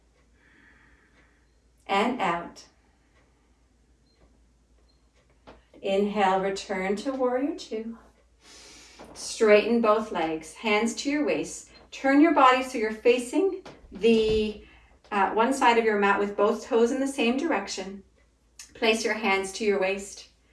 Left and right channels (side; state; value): both; identical; correlation 1.00